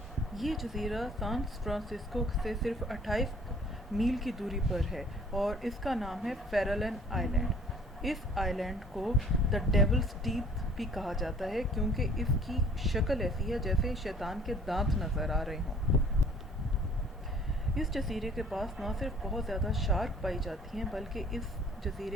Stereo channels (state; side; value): normal; both; correlation 0.54